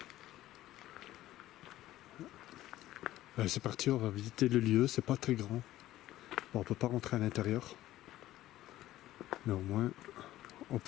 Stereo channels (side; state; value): right; quieter; 14.7 dB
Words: Allez, c'est parti, on va visiter le lieu, c'est pas très grand. Bon, on peut pas rentrer à l'intérieur. Mais au moins, on